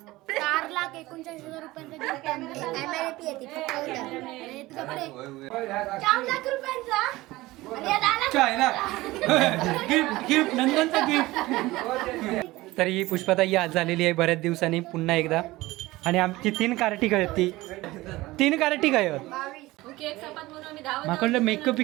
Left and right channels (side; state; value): left; quieter; 19.1 dB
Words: 4,49,000 रुपयांचा MRP येते फक्त उद्या. आणि तुझ्याकडे 4 लाख रुपयांचा आणि या 10 लाख गिफ्ट नंदनचा गिफ्ट. तर ही पुष्पाताई आज झालेली आहे बऱ्याच दिवसांनी पुन्हा एकदा. आणि आमची 3 कार्टी काय ती 3 कार्टी काय माकडलं मेकअप